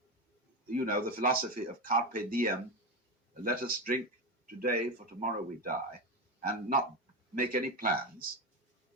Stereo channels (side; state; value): both; normal; correlation 0.16